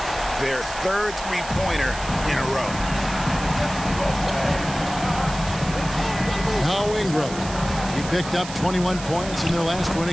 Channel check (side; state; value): right; noise; hiss, 12 dB below the sound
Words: Their third three-pointer in a row. Now Ingram. He picked up 21 points in their last win